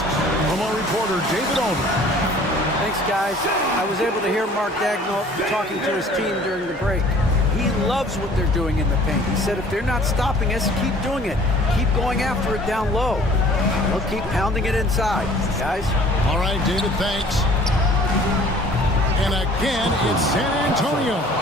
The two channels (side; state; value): both; normal; correlation 0.51